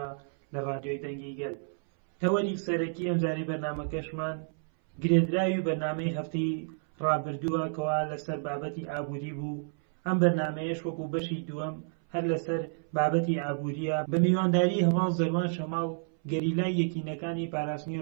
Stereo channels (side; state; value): left; silent; 58 dB below the other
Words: لە ڕادیۆی دەنگی گەل. تەوەری سەرەکی ئەمجارەی بەرنامەکەشمان گرێدراوی بەرنامەی هەفتەی ڕابردووە کەوا لەسەر بابەتی ئابووری بوو. ئەم بەرنامەیەش وەکو بەشی دووەم هەر لەسەر بابەتی ئابووریە بە میوانداری هەواڵ زەروان شەماڵ گەریلای یەکینەکانی